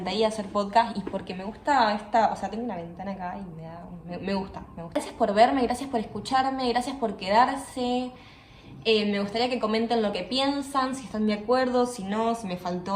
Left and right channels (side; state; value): both; identical; correlation 1.00